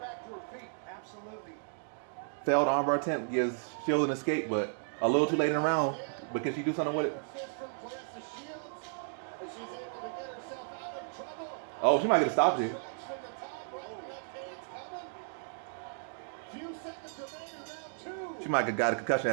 to her feet. Absolutely. Failed armbar attempt gives Shields an escape, but a little too late in the round. But can she do something with it? Oh, she might get a stop here. She might have got a concussion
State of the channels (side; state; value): left; silent; digital silence